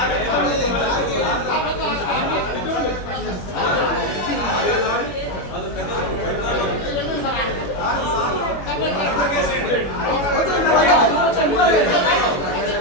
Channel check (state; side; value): late; right; 21 ms